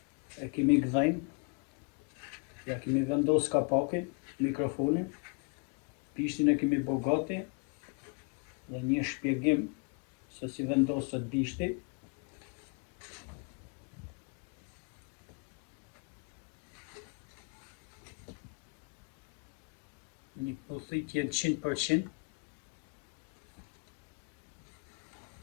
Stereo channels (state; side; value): quieter; right; 34.4 dB